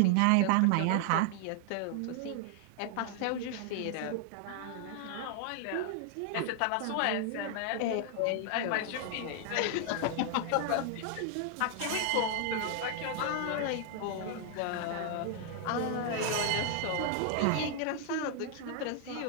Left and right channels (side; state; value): both; different; correlation 0.00